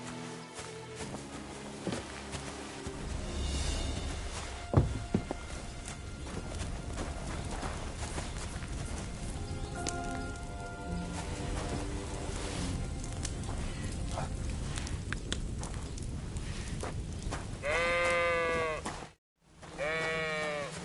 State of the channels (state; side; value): identical; both; correlation 1.00